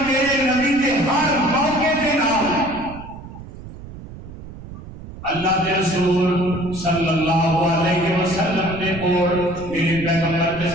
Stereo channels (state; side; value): noise; right; rumble, 14 dB below the sound